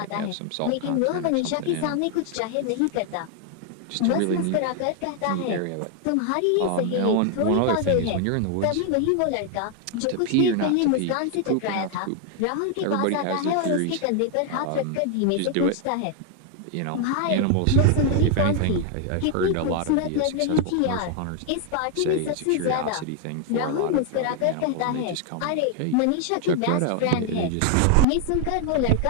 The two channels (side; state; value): both; different; correlation 0.00